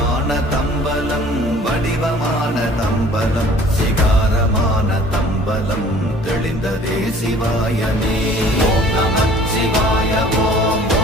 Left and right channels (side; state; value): both; normal; correlation 0.51